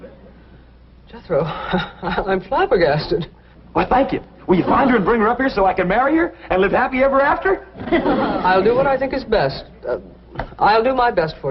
Jethro, I'm flabbergasted. Well, thank you. Will you find her and bring her up here so I can marry her and live happy ever after? I'll do what I think is best. I'll do my best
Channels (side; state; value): both; identical; correlation 1.00